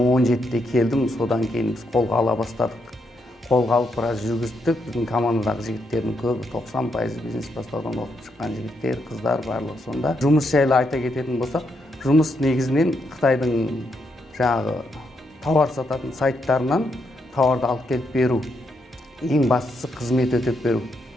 келдім. Содан кейін біз қолға ала бастадық. Қолға алып біраз жүргіздік. Біздің командадағы жігіттердің көбі 90% бизнес бастаудан оқып шыққан жігіттер, қыздар барлығы сонда. Жұмыс жайлы айта кететін болсақ, жұмыс негізінен Қытайдың жаңағы тауар сататын сайттарынан тауарды алып келіп беру. Ең бастысы қызмет өтеп беру.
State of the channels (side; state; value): both; normal; correlation 0.79